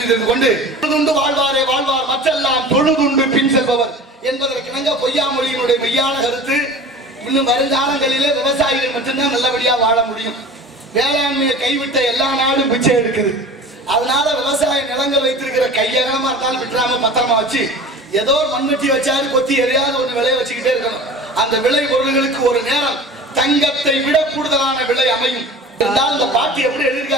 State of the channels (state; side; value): normal; both; correlation 0.39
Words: தெரிவித்துக் கொண்டு தொழுதுண்டு வாழ்வாரே வாழ்வார் மற்றெல்லாம் தொழுதுண்டு பின் செல்பவர் என்பதற்கிணங்க பொய்யாமொழியினுடைய மெய்யான கருத்து. இன்னும் வருங்காலங்களிலே விவசாயிகள் மட்டும்தான் நல்லபடியா வாழ முடியும். வேளாண்மையை கைவிட்ட எல்லா நாடும் பிச்சை எடுக்குது. அதனால விவசாய நிலங்கள் வைத்திருக்கிற கையகமா இருந்தாலும் விட்டுறாம பத்திரமா வச்சு ஏதோ ஒரு மண்வெட்டி வச்சாரு கொத்தி எதையாவது ஒன்று விளைய வச்சுக்கிட்டே இருக்கணும். அந்த விளை பொருள்களுக்கு ஒரு நேரம் தங்கத்தை விட கூடுதலான விலை அமையும். இருந்தாலும் இந்த பாட்டி எப்படி